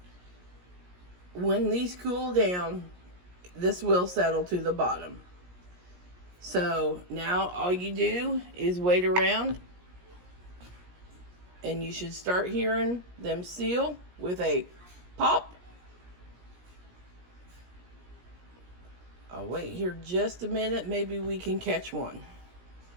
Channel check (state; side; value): late; left; 17 ms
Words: when these cool down, this will settle to the bottom. So now all you do is wait around and you should start hearing them seal with a pop. I'll wait here just a minute. Maybe we can catch one.